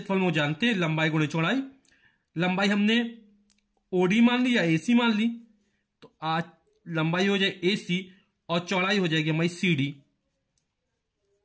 में वो जानते हैं, लंबाई गुणे चौड़ाई। लंबाई हमने ओडी मान ली या एसी मान ली, तो आज लंबाई हो जाए एसी और चौड़ाई हो जाएगी हमारी सीडी।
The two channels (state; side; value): identical; both; correlation 1.00